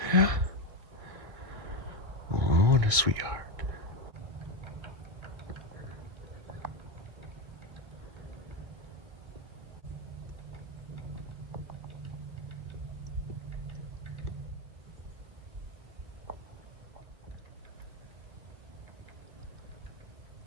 Yeah? Oh, what a sweetheart.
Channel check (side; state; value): left; late; 1.6 ms